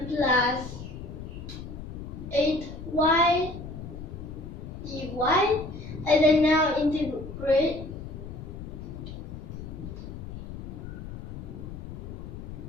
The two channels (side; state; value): left; noise; rumble, 10 dB below the sound